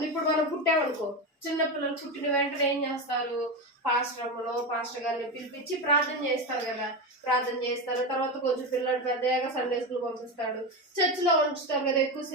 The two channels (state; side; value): normal; both; correlation 0.16